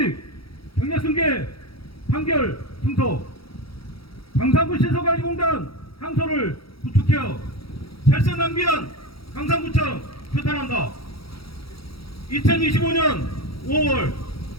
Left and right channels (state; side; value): late; right; 0.75 ms